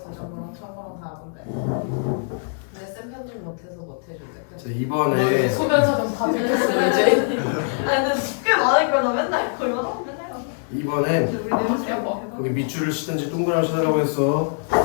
부정거랑 청거랑 다 하던데. 근데 쌤 편집 못해서 못 해준대. 자 이번에 소변사정 다 들켰어 이제. 아니 근데 쉽게 많으니까 나 맨날 그거 하면 맨날 이번엔 우리 내보세요. 거기 밑줄을 치든지 동그라미 치라고 했어.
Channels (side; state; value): right; silent; 63 dB below the other